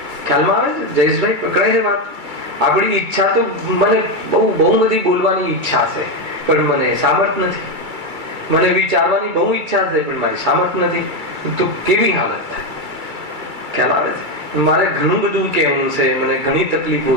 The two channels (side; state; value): left; late; 2.3 ms